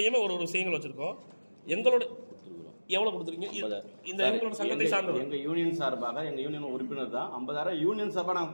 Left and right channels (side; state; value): both; inverted; correlation -1.00